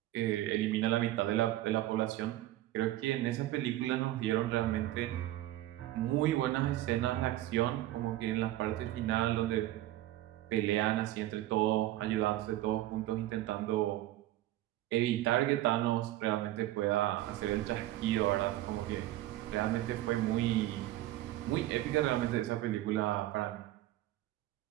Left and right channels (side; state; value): left; quieter; 15.1 dB